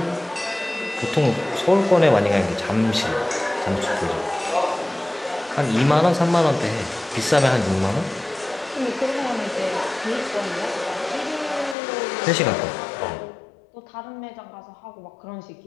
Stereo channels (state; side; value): drops out; right; at 11.8 s